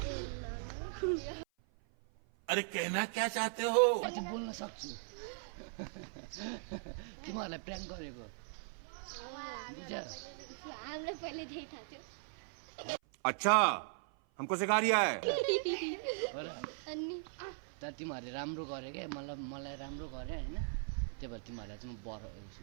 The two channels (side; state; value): left; silent; 52 dB below the other